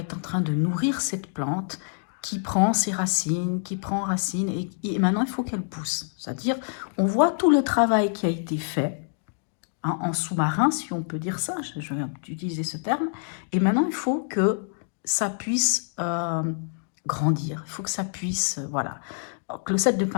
en train de nourrir cette plante qui prend ses racines, qui prend racine, et maintenant il faut qu'elle pousse. C'est-à-dire, on voit tout le travail qui a été fait, hein, en sous-marin, si on peut dire ça, je vais utiliser ce terme, et maintenant il faut que ça puisse grandir, il faut que ça puisse, voilà. Donc, le 7 de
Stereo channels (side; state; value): right; silent; digital silence